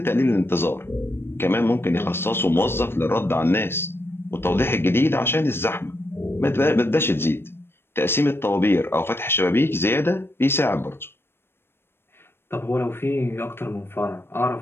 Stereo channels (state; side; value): late; right; 0.11 ms